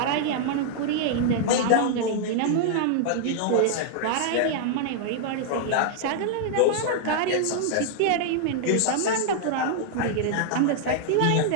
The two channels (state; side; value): different; both; correlation -0.01